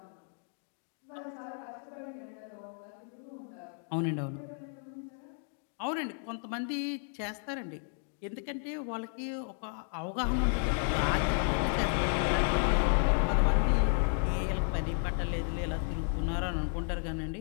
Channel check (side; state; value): right; silent; 56 dB below the other